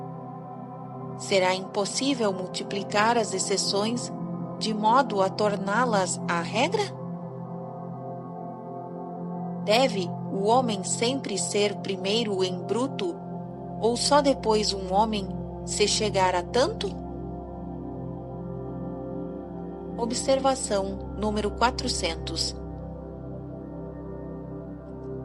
Será impossível multiplicar as exceções de modo a torná-las a regra? Deve o homem sempre ser primeiro em bruto, ou só depois um homem se chegar a tanto? Observação número 400.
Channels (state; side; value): identical; both; correlation 1.00